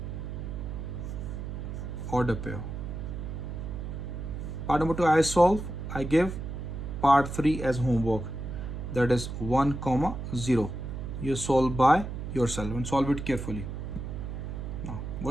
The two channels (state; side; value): noise; right; hum, 6 dB below the sound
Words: order pair. Part number 2 I solve. I give part 3 as homework. that is 1 comma 0. You solve by yourself and solve it carefully. Now